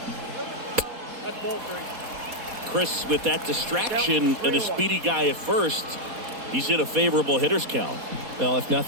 That's ball three. Chris, with that distraction and a speedy guy at first, he's in a favorable hitter's count. Well, if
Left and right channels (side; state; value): left; late; 4.2 ms